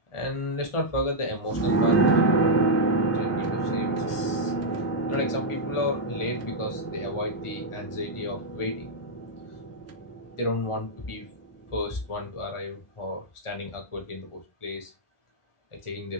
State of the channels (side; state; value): right; late; 1.4 ms